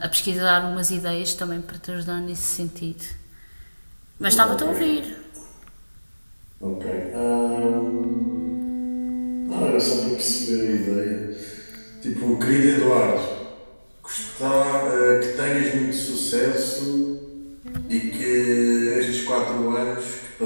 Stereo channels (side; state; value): both; inverted; correlation -1.00